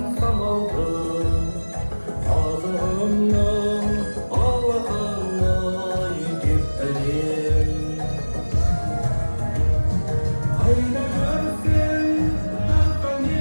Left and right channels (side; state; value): both; inverted; correlation -1.00